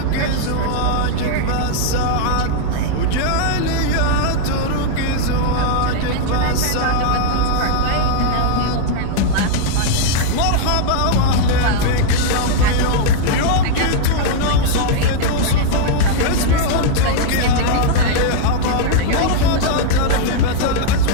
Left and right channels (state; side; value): different; both; correlation -0.01